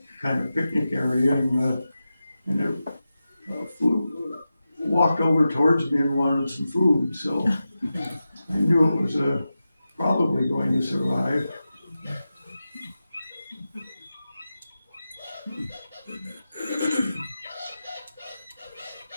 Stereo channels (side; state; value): both; inverted; correlation -0.92